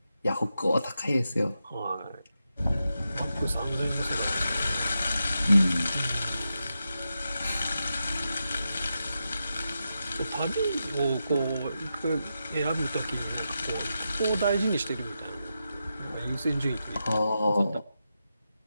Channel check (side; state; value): both; inverted; correlation -0.88